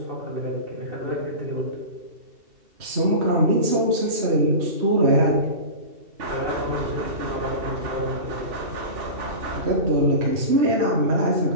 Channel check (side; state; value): left; late; 2.7 ms